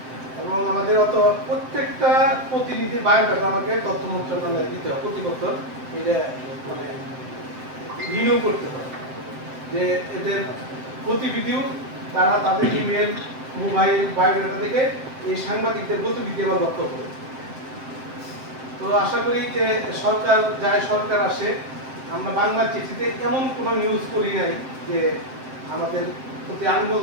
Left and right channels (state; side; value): late; left; 7.7 ms